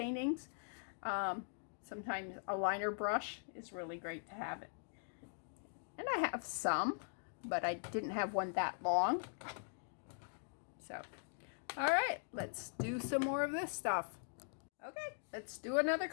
sometimes a liner brush is really great to have it. And I have some, but I didn't have one that long. So, all right, let's do some more of this stuff. Okay, let's do another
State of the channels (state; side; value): silent; right; digital silence